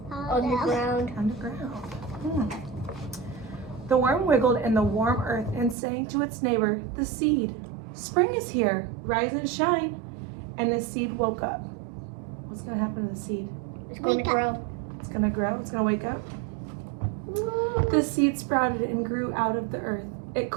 Underground. Underground. The worm wiggled in the warm earth and sang to its neighbor, the seed. Spring is here. Rise and shine. And the seed woke up. What's going to happen to the seed? It's going to grow. It's going to grow. It's going to wake up. The seed sprouted and grew out of the earth. It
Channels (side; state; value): left; drops out; at 5.8 s